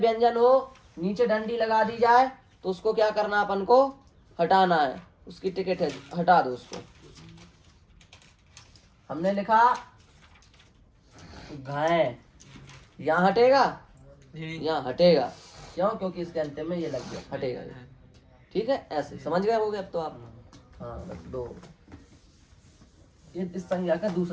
हो, नीचे डंडी लगा दी जाए, तो उसको क्या करना, अपन को हटाना है। उसकी टिकट है, हटा दो उसको। हमने लिखा घाय, यहाँ हटेगा, यहाँ हटेगा। क्यों? क्योंकि इसके अंतिम में ये लग गया, हटेगा ये। ठीक है, ऐसे समझ गए होगे अब तो आप। हाँ, रख दो। ये इस संज्ञा का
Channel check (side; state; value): both; identical; correlation 1.00